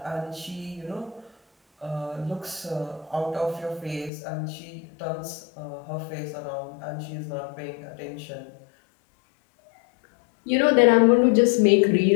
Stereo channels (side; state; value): right; drops out; at 4.1 s